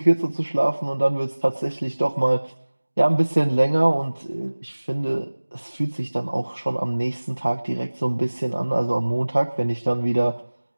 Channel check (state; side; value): inverted; both; correlation -1.00